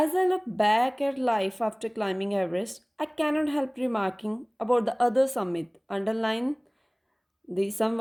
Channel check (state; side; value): identical; both; correlation 1.00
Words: I look back at life after climbing Everest, I cannot help remarking about the other summit. Underline some